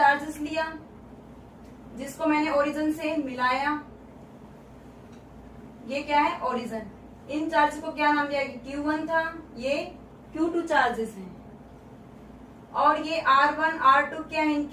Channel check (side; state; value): both; identical; correlation 1.00